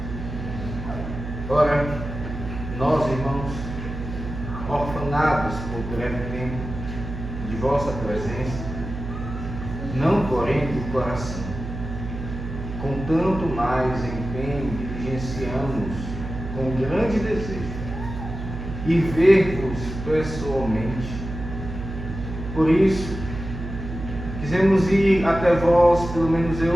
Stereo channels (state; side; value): noise; right; hum, 8 dB below the sound